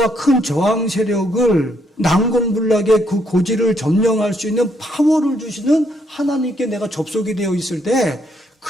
큰 저항 세력을 난공불락의 그 고지를 점령할 수 있는 파워를 주시는 하나님께 내가 접속이 되어 있을 때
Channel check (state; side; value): normal; both; correlation 0.73